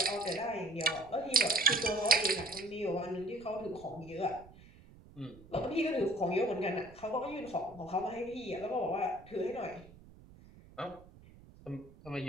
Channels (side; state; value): right; noise; rumble, 21 dB below the sound